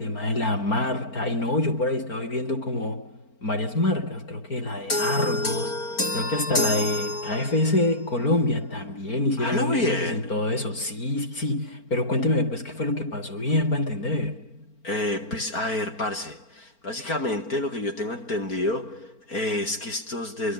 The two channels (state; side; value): late; right; 4.4 ms